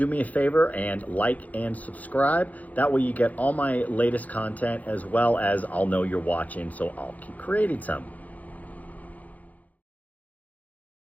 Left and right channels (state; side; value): late; right; 0.077 ms